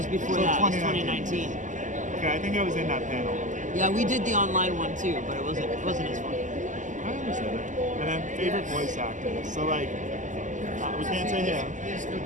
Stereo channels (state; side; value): late; left; 0.37 ms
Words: before So that. It was 2019. 2019. Okay, I think I was in that panel. Yeah, we did the online one too, but it wasn't as fun. I understand it. And then favorite voice actor. So like, we can't say him,